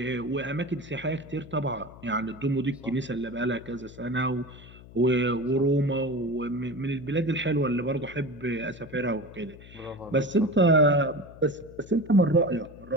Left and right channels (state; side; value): noise; left; hum, 19 dB below the sound